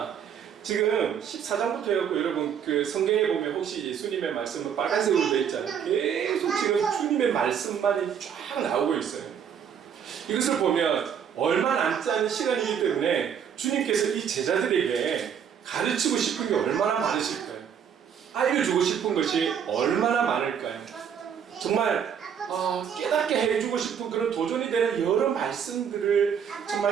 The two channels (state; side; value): quieter; left; 8.0 dB